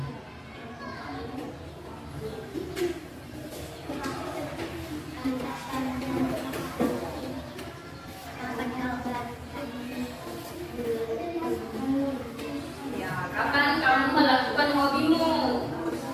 Ya, kapan kamu melakukan hobimu?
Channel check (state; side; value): identical; both; correlation 1.00